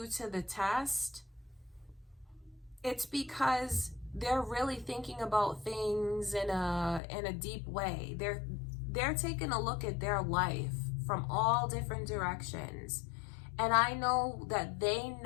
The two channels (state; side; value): drops out; right; at 7.0 s